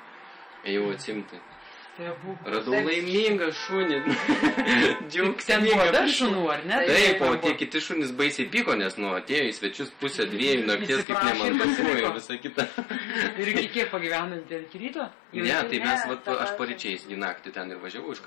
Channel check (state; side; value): drops out; right; at 11.1 s